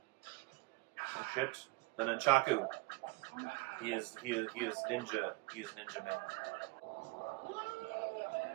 Oh shit! The Nunchaku. He is ninja. He is Ninja Man.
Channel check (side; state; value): left; quieter; 23.8 dB